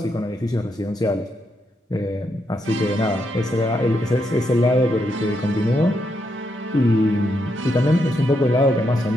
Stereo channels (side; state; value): both; normal; correlation 0.80